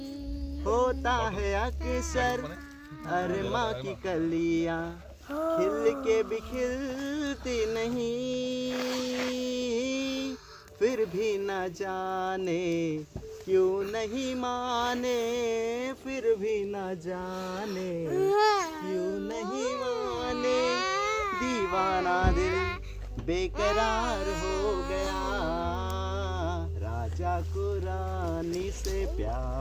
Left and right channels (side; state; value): both; identical; correlation 1.00